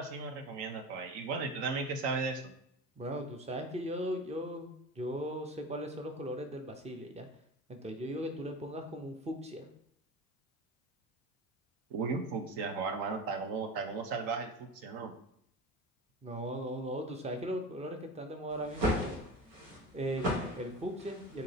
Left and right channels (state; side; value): normal; both; correlation 0.30